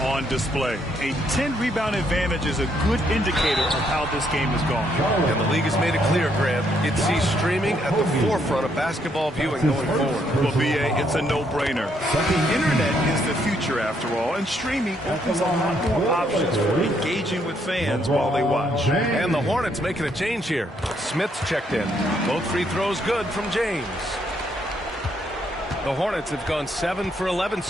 display. A 10-rebound advantage is a good indicator of how this game has gone. And the league has made it clear, Grant. It sees streaming at the forefront of basketball viewing going forward. Well, BA, it's a no-brainer. The internet is the future, after all, and streaming opens a lot more options for engaging with fans while they watch. And the Hornets making a change here. Smith's checked in. Both free throws good from James. The Hornets have gone 7 for 11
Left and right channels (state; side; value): normal; both; correlation 0.72